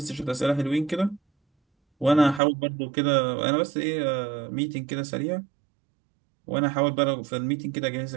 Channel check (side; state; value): left; drops out; at 2.4 s